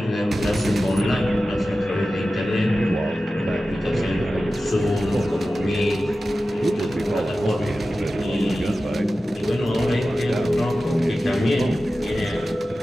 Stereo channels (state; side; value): normal; both; correlation 0.94